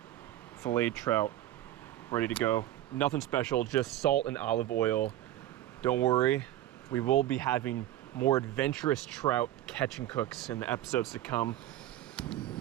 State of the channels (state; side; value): quieter; left; 13.5 dB